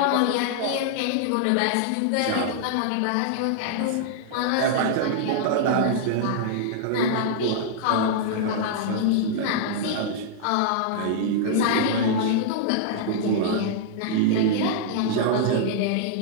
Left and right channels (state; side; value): different; both; correlation -0.01